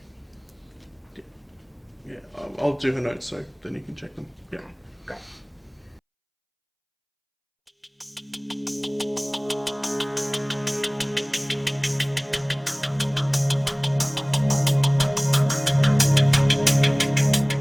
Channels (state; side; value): identical; both; correlation 1.00